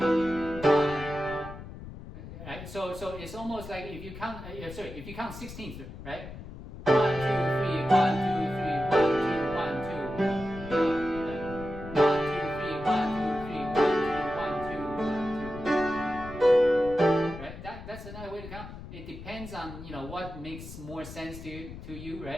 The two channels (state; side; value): noise; left; rumble, 12 dB below the sound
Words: 2. Right? So it's almost like if you count if you count 16th, right? 1 2 3 1 2 3 1 2 1 2. That's another way to count. It depends on what makes more sense to you,